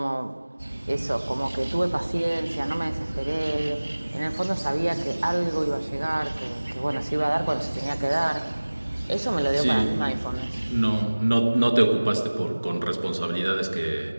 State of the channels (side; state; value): both; inverted; correlation -1.00